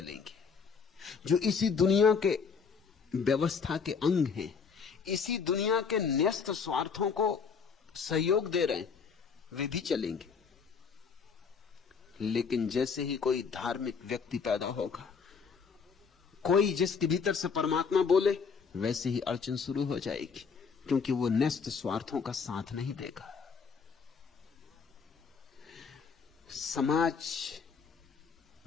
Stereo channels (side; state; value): right; quieter; 5.8 dB